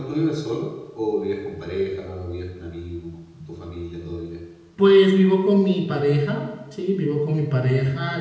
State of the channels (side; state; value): both; identical; correlation 1.00